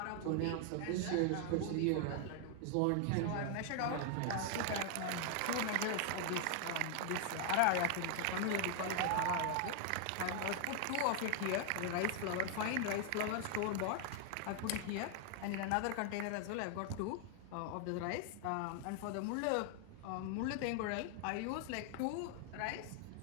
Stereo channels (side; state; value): both; different; correlation 0.00